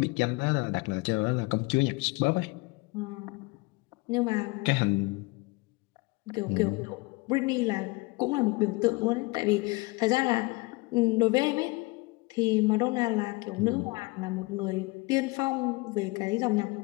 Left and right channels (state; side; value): quieter; right; 24.7 dB